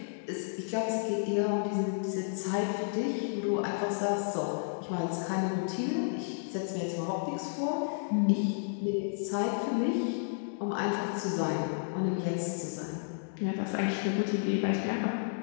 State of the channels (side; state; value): right; silent; digital silence